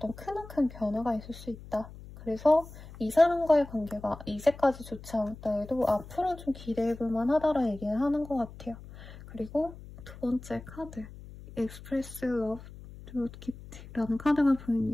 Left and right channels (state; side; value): noise; left; hum, 16 dB below the sound